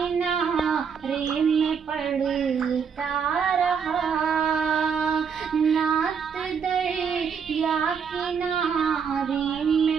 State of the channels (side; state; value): left; quieter; 6.6 dB